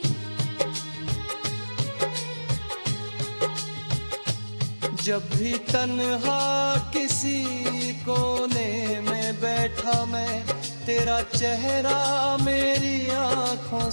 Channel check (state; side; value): inverted; both; correlation -1.00